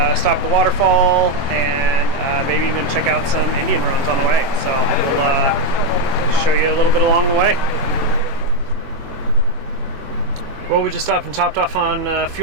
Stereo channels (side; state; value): left; late; 22 ms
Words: at the waterfall, and maybe even check out some Indian ruins on the way. So we'll show you a little bit along the way. Well, we just stopped and topped off on